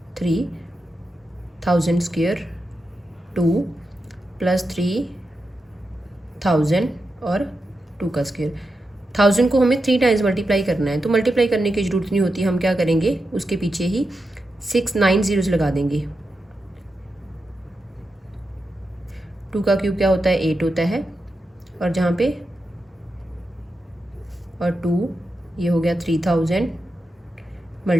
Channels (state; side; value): normal; both; correlation 0.88